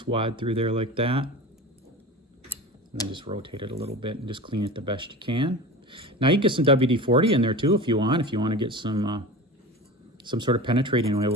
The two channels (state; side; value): normal; both; correlation 0.32